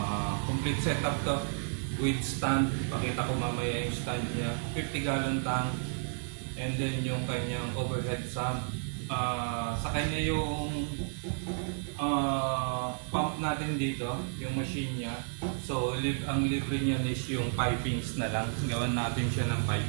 Complete setup to with stand. Pakita ko mamaya yung stand niya. 50-gallon tank. And then yung kanyang overhead sump. Sa kanya yung pump natin dito, yung machine niya. So, ang libre niya is yung pipings na lang. Gawan natin siya ng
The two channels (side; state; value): left; silent; digital silence